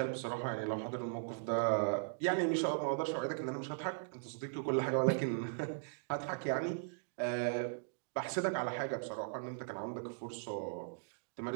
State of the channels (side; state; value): left; silent; digital silence